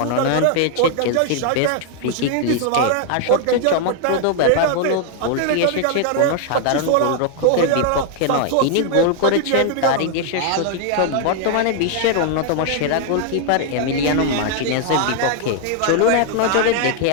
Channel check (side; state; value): both; different; correlation 0.00